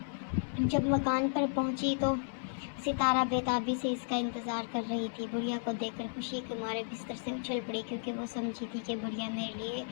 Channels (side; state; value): right; silent; digital silence